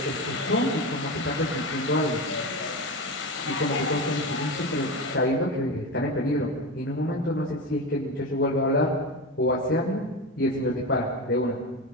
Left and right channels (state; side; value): normal; both; correlation 0.21